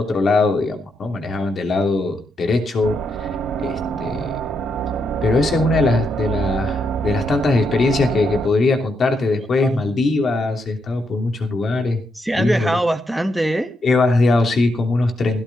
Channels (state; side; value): normal; both; correlation 0.80